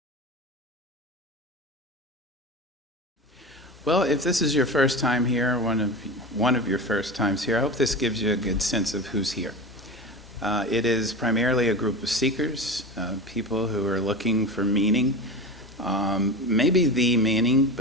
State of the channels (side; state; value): both; normal; correlation 0.27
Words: if this is your first time here, one of your first times here, I hope this gives you a good sense of who's here. It is primarily a group of seekers, people who are looking for meaning, maybe the meaning,